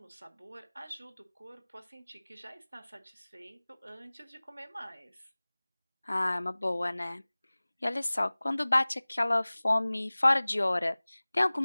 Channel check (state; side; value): inverted; both; correlation -1.00